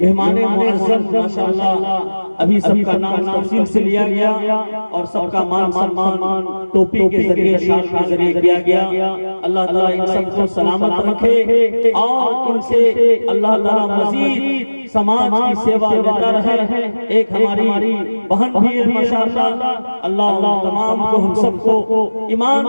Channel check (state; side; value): inverted; both; correlation -1.00